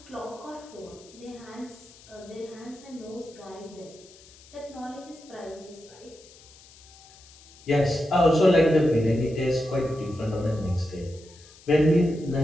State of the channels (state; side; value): noise; left; hiss, 23 dB below the sound